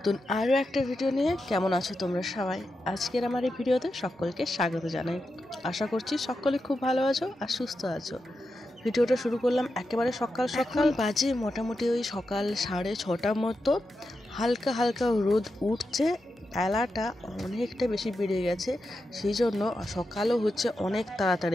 আরও একটা ভিডিও নিয়ে। কেমন আছো তোমরা সবাই? আজকের আমার এই ভিডিওতে সকলকে স্বাগত জানাই। আশা করছি সকলে খুব ভালো আছো আর সুস্থ আছো। ভিডিওটা শুরু করলাম একেবারে সকাল সকাল, বাজে মোটামুটি ওই সকাল 6:30 মতো। হালকা হালকা রোদ উঠছে, বেলাটা অনেকটা বেশি বেড়ে গেছে, সেই জন্য সকালও হচ্ছে অনেক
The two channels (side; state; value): both; normal; correlation 0.88